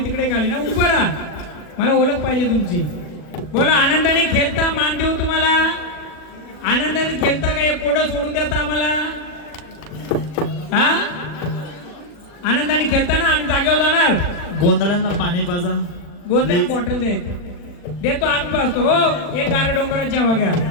तिकडे खाली ना, उभं राहा, मला ओळख पाहिजे तुमची. बोला. आनंदाने खेळता, मान देऊ तुम्हाला. आनंदाने खेळता का? एक कोड सोडून देता आम्हाला? हा आनंदाने खेळता ना? आम्ही जागेवर जाणार. गोंधळांना पाणी पाजा. गोंधळ बॉटल देतो आम्ही पाजतो. हो एक गारे डोंगराची हवा घ्या.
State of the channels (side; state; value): right; late; 40 ms